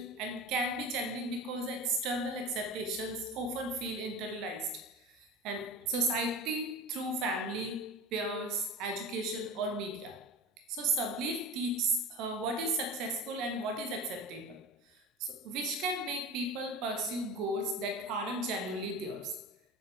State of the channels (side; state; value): both; normal; correlation 0.31